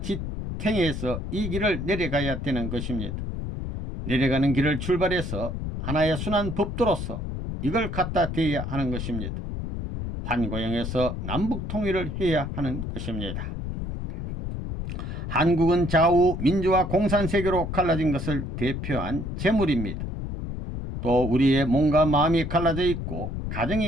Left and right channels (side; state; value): left; noise; rumble, 5 dB below the sound